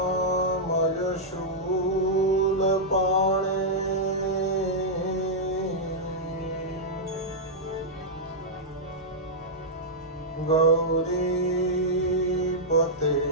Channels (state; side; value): normal; both; correlation -0.09